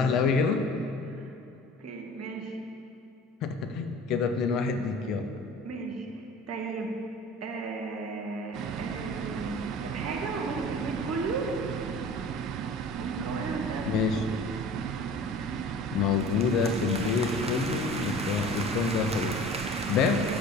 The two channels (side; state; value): both; normal; correlation 0.43